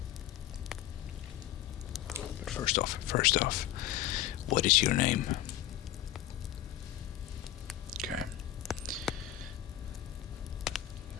But first off, what is your name? Okay.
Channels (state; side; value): quieter; right; 12.5 dB